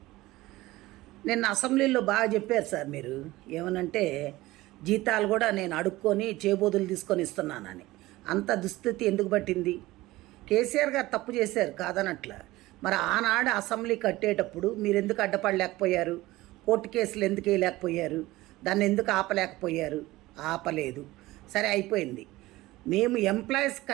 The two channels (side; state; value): left; quieter; 18.4 dB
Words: నిన్న అసెంబ్లీలో బాగా చెప్పారు సార్. మీరు ఏమనంటే జీతాలు కూడా నేను అడుక్కొని చేబోదులు తీసుకొని ఇస్తున్నానని. అంత దుస్థితి ఎందుకు పట్టింది? కేసీఆర్ గారు తప్పు చేశారు కాదనట్ల. మరి ఆనాడు అసెంబ్లీ కట్టేటప్పుడు మీరు ఎందుకు అడ్డపడలేకపోయారు? కోర్టు కేసులు ఎందుకు వేయలేకపోయారు? దాన్ని ఎందుకు ఆపలేకపోయారు? ఆపలేదు. సరే అయిపోయింది. మేము ఎంప్లాయీస్